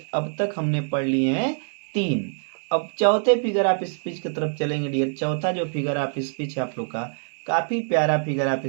अब तक हमने पढ़ लिए हैं 3। अब चौथे फिगर ऑफ स्पीच की तरफ चलेंगे डियर। चौथा जो फिगर ऑफ स्पीच है आप लोग का, काफी प्यारा फिगर ऑफ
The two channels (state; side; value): silent; left; digital silence